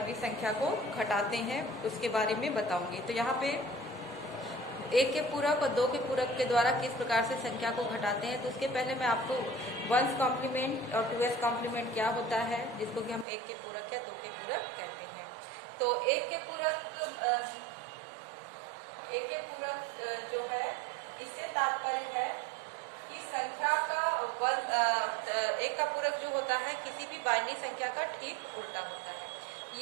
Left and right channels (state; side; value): drops out; left; at 13.2 s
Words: संख्या को घटाते हैं उसके बारे में बताऊंगी। तो यहाँ पे 1 के पूरक और 2 के पूरक के द्वारा किस प्रकार से संख्या को घटाते हैं, तो उसके पहले मैं आपको वंश कॉम्प्लीमेंट और 2s कॉम्प्लीमेंट क्या होता है, जिसको कि हम 1 के पूरक या 2 के पूरक कहते हैं। तो 1 के पूरक जो है, इससे तात्पर्य है कि संख्या का एक का पूरक जो होता है किसी भी बाइनरी संख्या का ठीक उल्टा होता है।